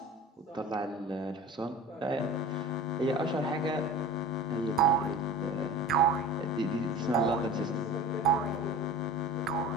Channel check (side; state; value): both; normal; correlation 0.37